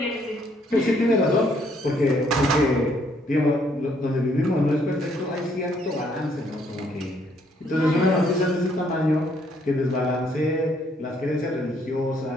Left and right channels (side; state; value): both; normal; correlation 0.68